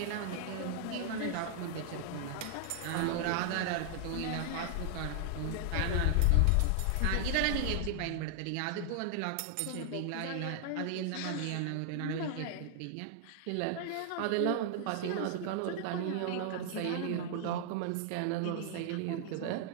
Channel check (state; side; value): different; both; correlation 0.00